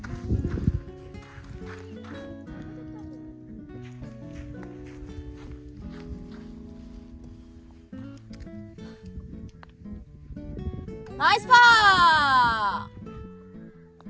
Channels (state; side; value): identical; both; correlation 1.00